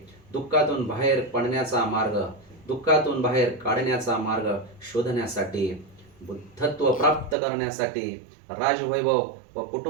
दुःखातून बाहेर पडण्याचा मार्ग, दुःखातून बाहेर काढण्याचा मार्ग शोधण्यासाठी, बुद्धत्व प्राप्त करण्यासाठी राजवैभव व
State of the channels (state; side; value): drops out; left; at 7.4 s